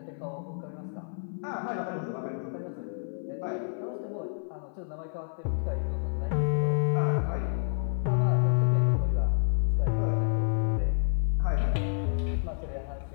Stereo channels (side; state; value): right; silent; 56 dB below the other